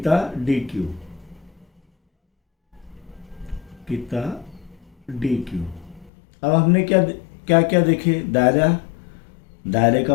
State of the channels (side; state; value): right; drops out; at 6.1 s